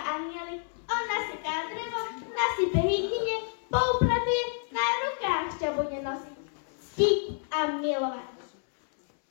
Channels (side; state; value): right; silent; 58 dB below the other